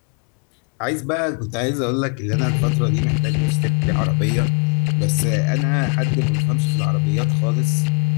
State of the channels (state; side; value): quieter; right; 39.7 dB